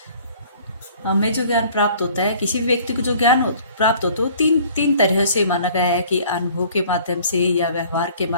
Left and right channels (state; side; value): inverted; both; correlation -0.53